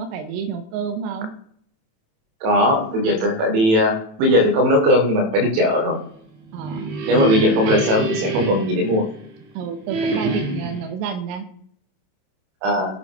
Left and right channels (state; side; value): late; left; 27 ms